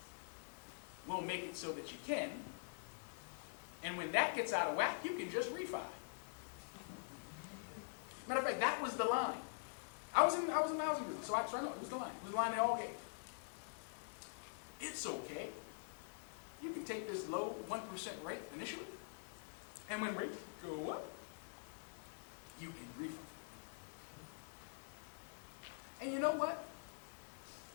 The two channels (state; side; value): silent; right; digital silence